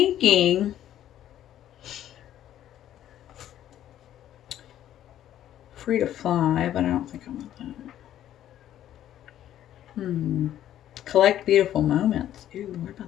free to fly, but I don't think I want that. Collect beautiful moments. Ooh, what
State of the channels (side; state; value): right; quieter; 11.8 dB